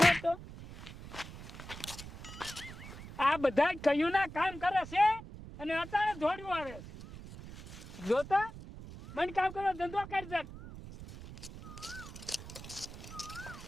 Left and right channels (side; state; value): right; noise; rumble, 13 dB below the sound